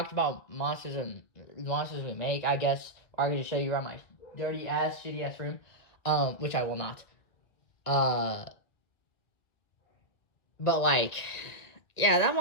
about monsters we make, I guess, or I could just show you around my dirty ass, shitty ass room, which I will not. But like, yeah, that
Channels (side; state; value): right; late; 1.6 ms